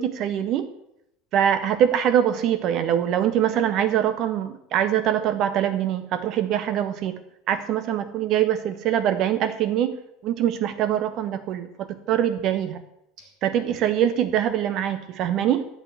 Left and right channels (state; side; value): quieter; left; 9.9 dB